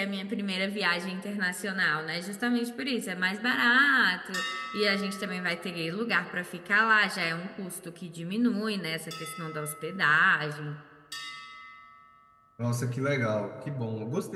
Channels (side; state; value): both; identical; correlation 1.00